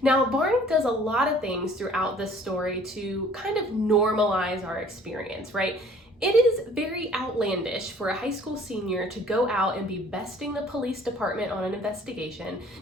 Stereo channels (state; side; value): normal; both; correlation 0.54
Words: Now, Barney does a lot of things throughout this story to kind of normalize our experience, right? It is very outlandish for a high school senior to go out and be besting the police department on an investigation.